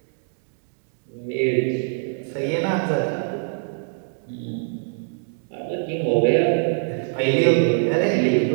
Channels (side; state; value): left; silent; digital silence